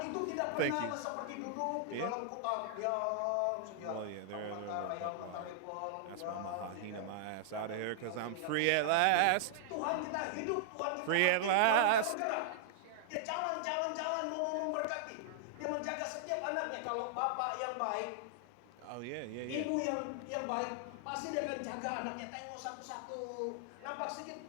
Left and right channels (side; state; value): both; different; correlation -0.01